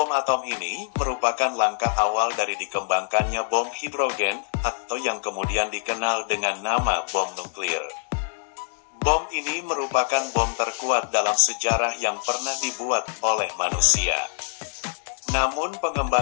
atom ini merupakan langkah awal dari dikembangkannya bom hidrogen atau yang kemudian dikenal dengan nama bom nuklir. Bom ini merupakan bom terkuat dalam sejarah yang pernah dibuat oleh manusia. Namun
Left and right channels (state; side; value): silent; right; 62 dB below the other